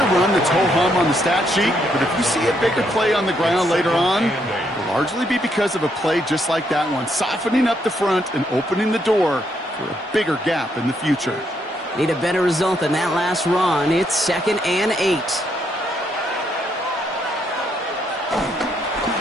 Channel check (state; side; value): normal; both; correlation 0.75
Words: run that's ho-hum on the stat sheet, but if you see a bigger play on the ground later on, it'll largely be because of a play just like that one, softening up the front and opening the door for a bigger gap in the future. Need a better result than that last run. It's 2nd and 8.